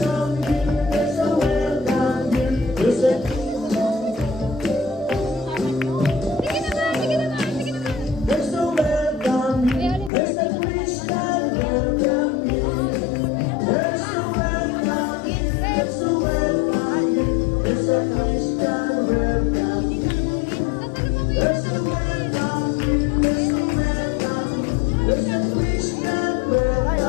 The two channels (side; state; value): right; drops out; at 10.1 s